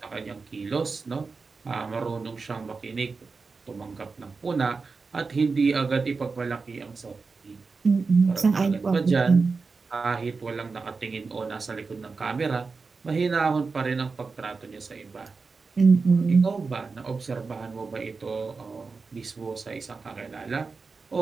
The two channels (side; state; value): left; quieter; 4.4 dB